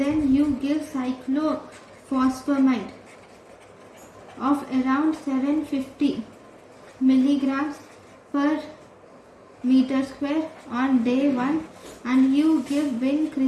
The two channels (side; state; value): both; identical; correlation 1.00